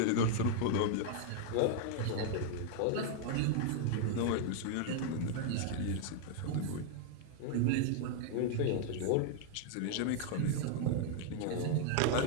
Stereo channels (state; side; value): different; both; correlation -0.01